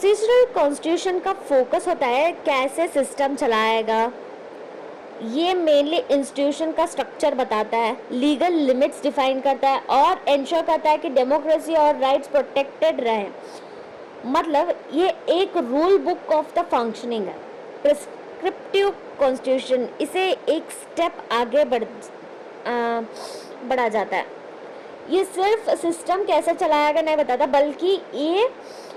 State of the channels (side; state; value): both; identical; correlation 1.00